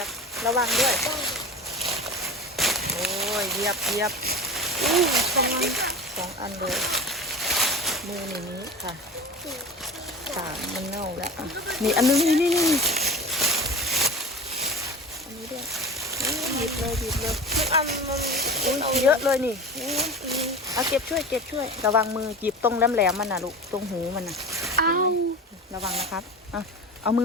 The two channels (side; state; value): both; normal; correlation 0.32